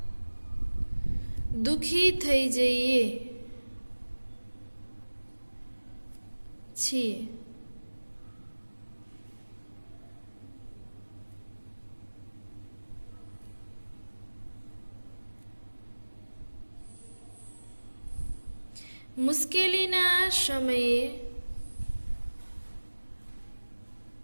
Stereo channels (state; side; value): inverted; both; correlation -1.00